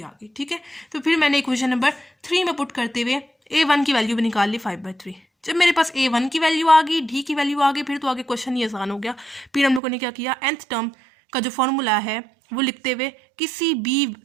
आ गई। ठीक है, तो फिर मैंने इक्वेशन नंबर 3 में पुट करते हुए A1 की वैल्यू भी निकाल ली 5/3। जब मेरे पास A1 की वैल्यू आ गई, D की वैल्यू आ गई, फिर तो आगे क्वेश्चन ही आसान हो गया। फिर हम लोगों ने क्या किया, nth टर्म का जो फॉर्मूला है वो लिखते हुए किसी भी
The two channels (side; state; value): left; drops out; at 9.8 s